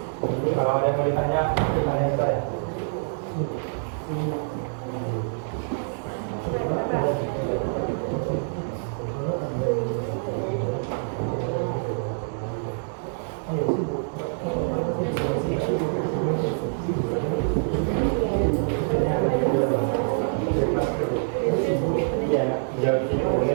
Kalau ada yang mau ditanya, tanya ke saya. Ya, jauh sini boleh.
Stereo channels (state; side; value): silent; left; digital silence